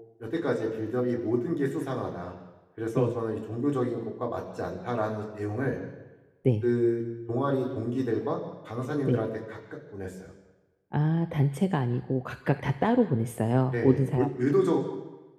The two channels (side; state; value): both; identical; correlation 1.00